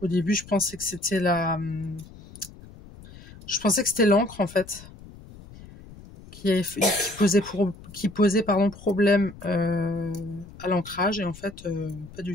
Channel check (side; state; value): left; noise; rumble, 18 dB below the sound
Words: début je pensais que c'était l'encre en fait. Qui posait problème à l'ancrage, et en fait pas du